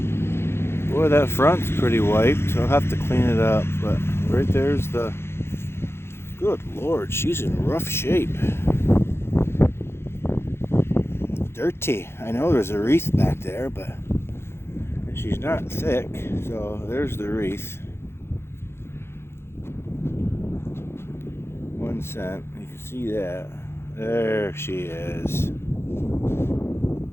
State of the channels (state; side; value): late; right; 0.12 ms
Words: Boy, that front's pretty wiped, so I'll have to clean it up. But right there's the... Good Lord, she's in rough shape. Dirty. I know there's a wreath back there, but she's not thick, so there's the wreath. 1 cent. You can see that. There she is.